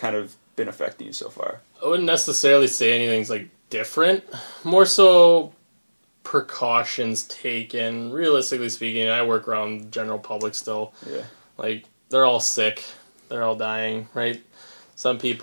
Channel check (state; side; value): inverted; both; correlation -1.00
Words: of been affecting you so far? I wouldn't necessarily say anything's like different. More so precautions taken. Realistically speaking, I work around general public still. Yeah. Like they're all sick. They're all dying, right? Some